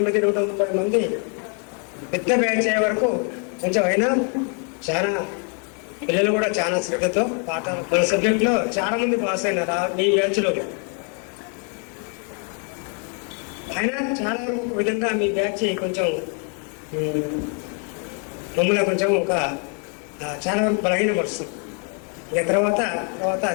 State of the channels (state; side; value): quieter; right; 39.7 dB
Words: 130 మంది పెద్ద బ్యాచ్ అయ్యే వరకు కొంచెం అయినా చాలా పిల్లలు కూడా చాలా శ్రద్ధతో పాఠాలు మన సబ్జెక్ట్లో చాలా మంది పాస్ అయినారు మీ బ్యాచ్లో. అయినా చాలా వరకు ఒక విధంగా మీ బ్యాచ్ కొంచెం మమ్మల్ని కొంచెం ఒక చాలా వరకు బలహీనపరుస్తుంది. ఇక తర్వాత